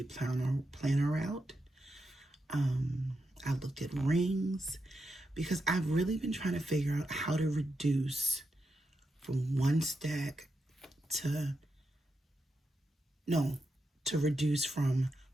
planner route. I looked at rings because I've really been trying to figure out how to reduce from one stack to no, to reduce from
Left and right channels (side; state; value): both; normal; correlation 0.86